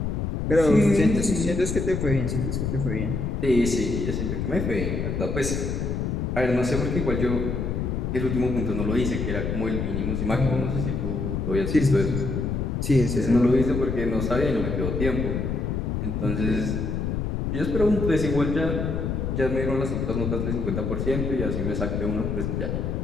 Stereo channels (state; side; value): noise; left; rumble, 1 dB below the sound